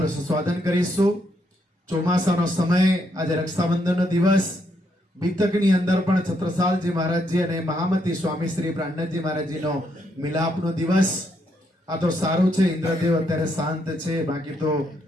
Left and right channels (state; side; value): normal; both; correlation 0.76